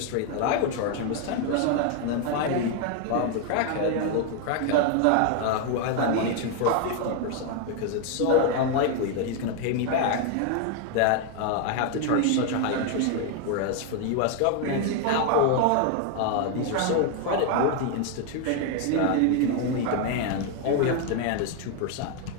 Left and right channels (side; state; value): both; different; correlation 0.01